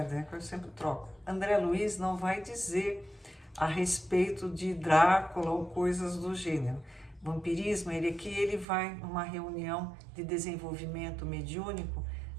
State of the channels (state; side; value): drops out; left; at 8.7 s